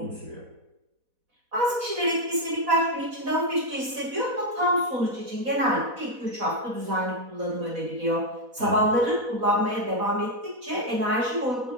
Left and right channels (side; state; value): left; late; 4.1 ms